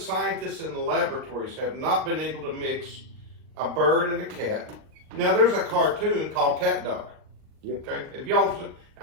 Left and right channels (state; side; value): late; left; 39 ms